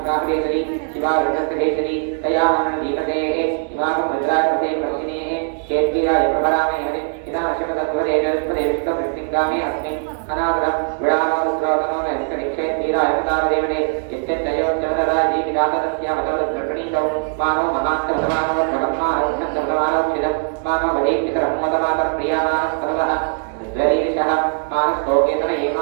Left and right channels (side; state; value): left; silent; 62 dB below the other